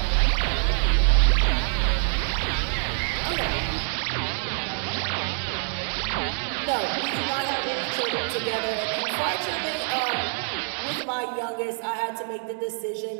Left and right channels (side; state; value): left; silent; digital silence